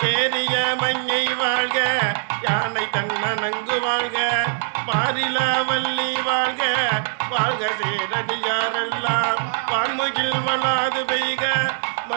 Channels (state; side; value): silent; left; digital silence